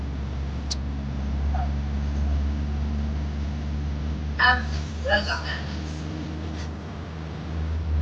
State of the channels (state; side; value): identical; both; correlation 1.00